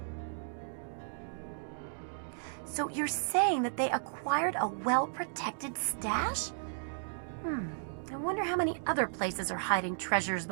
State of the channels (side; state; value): left; silent; digital silence